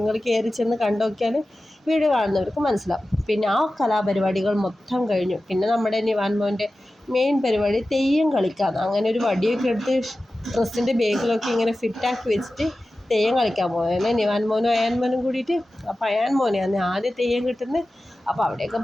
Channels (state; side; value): normal; both; correlation 0.95